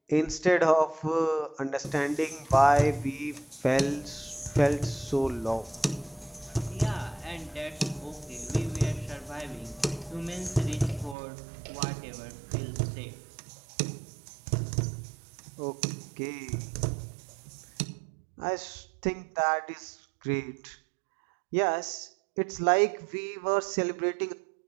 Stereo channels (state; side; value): drops out; left; at 11.2 s